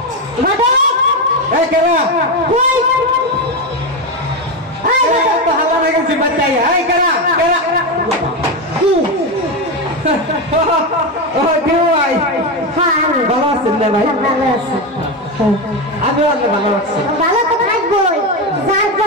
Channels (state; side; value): normal; both; correlation 0.12